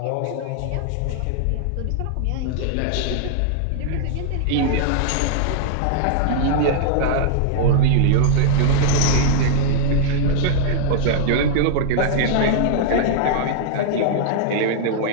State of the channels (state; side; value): different; both; correlation -0.01